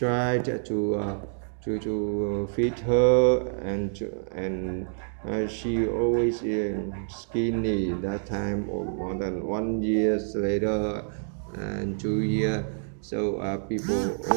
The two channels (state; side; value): silent; left; digital silence